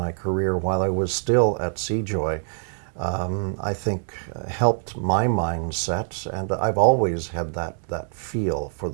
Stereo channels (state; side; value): silent; left; 62 dB below the other